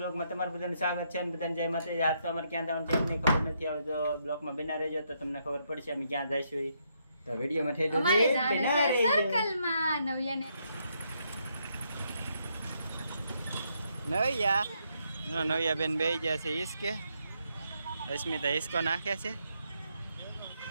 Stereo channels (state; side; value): inverted; both; correlation -0.76